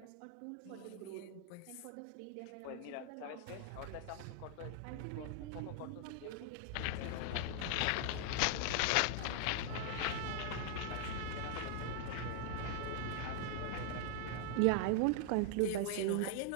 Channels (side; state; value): both; different; correlation -0.01